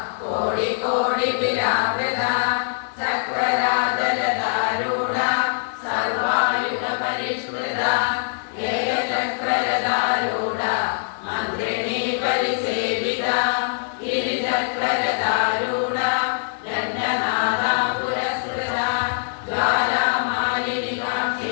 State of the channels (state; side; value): silent; right; 61 dB below the other